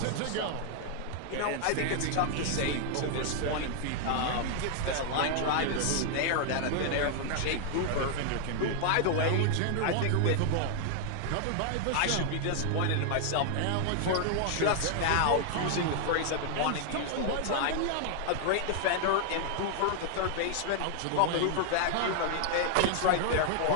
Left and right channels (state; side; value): different; both; correlation 0.00